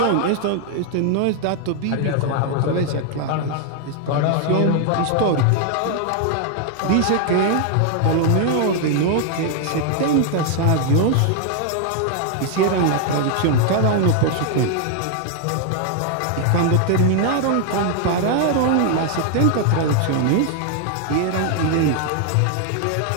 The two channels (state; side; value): different; both; correlation 0.00